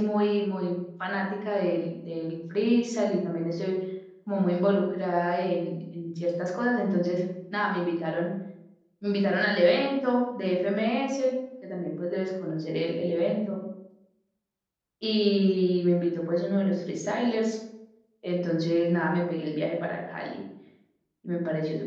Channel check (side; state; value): both; identical; correlation 1.00